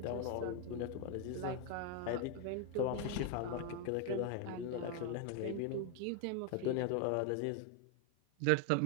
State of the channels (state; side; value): different; both; correlation 0.01